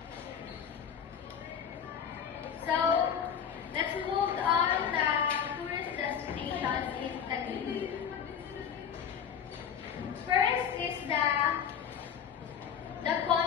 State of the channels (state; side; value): quieter; right; 7.9 dB